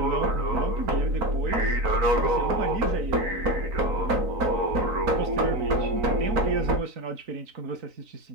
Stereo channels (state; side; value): late; left; 3.9 ms